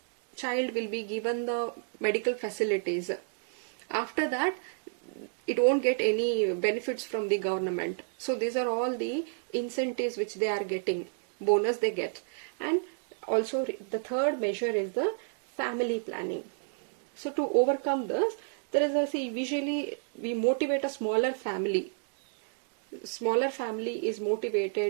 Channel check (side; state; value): left; silent; digital silence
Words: child will be given the medical facilities. After that, it won't get any benefits from the government. So these are all the incentives which they are getting, bonus they get. And also the third measure is the family planning. So to overcome this, there is a, see, visually we motivate a smaller family. Smaller family is